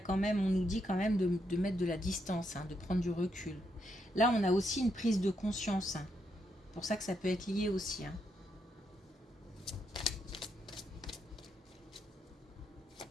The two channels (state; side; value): normal; both; correlation 0.79